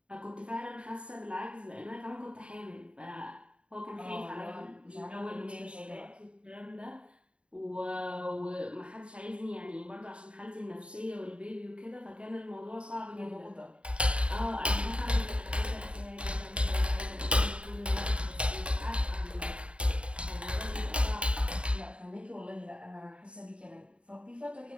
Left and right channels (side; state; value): left; late; 0.058 ms